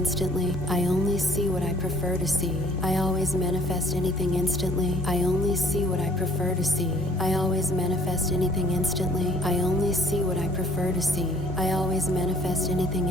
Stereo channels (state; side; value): normal; both; correlation 0.56